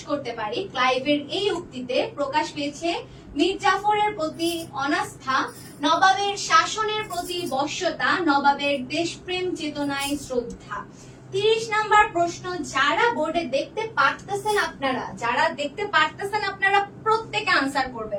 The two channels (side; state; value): both; identical; correlation 1.00